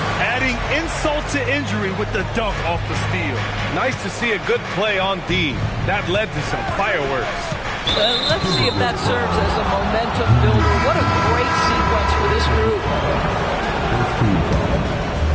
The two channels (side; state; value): both; identical; correlation 1.00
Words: Adding insult to injury with the dunk off the steal. Nice to see a good play on D. That led to some fireworks. Let's see if that serves as a momentum builder. What a great sequence for this group.